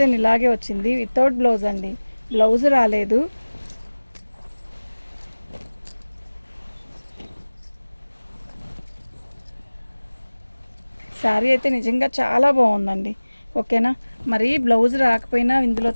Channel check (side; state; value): both; inverted; correlation -1.00